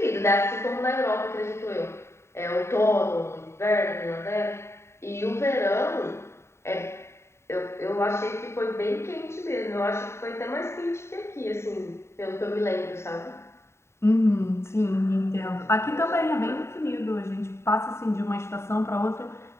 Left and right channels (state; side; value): late; right; 0.13 ms